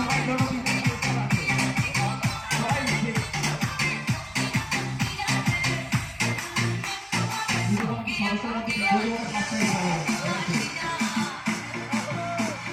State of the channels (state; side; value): identical; both; correlation 1.00